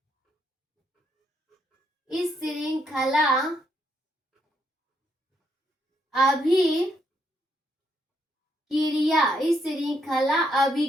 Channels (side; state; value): both; normal; correlation 0.75